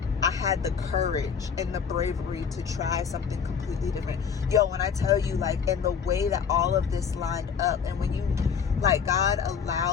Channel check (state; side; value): quieter; right; 6.7 dB